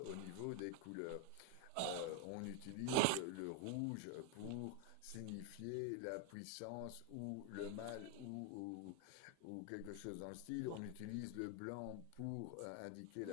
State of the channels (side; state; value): both; different; correlation 0.01